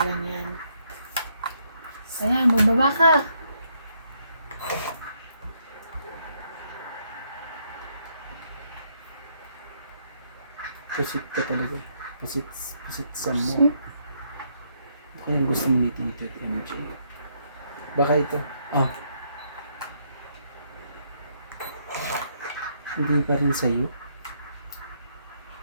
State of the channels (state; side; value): inverted; both; correlation -0.74